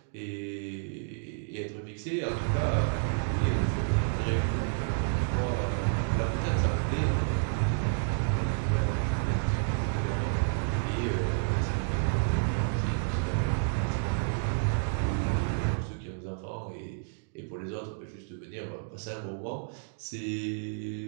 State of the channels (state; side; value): silent; left; digital silence